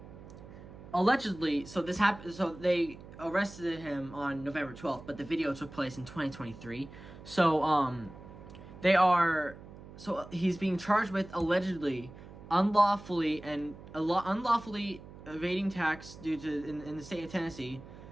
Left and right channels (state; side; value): noise; right; hum, 16 dB below the sound